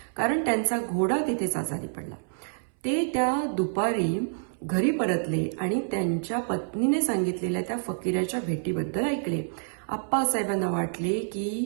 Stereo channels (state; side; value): silent; left; 60 dB below the other